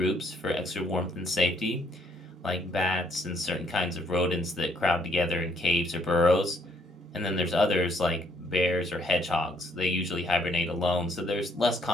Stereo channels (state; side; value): normal; both; correlation 0.68